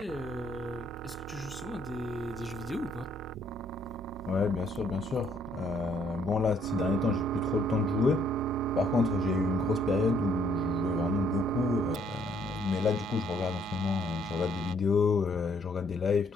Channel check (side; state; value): both; normal; correlation 0.67